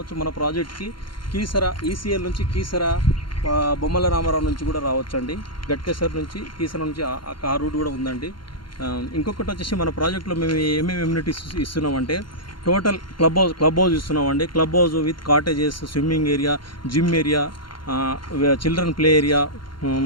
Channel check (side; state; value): right; late; 0.72 ms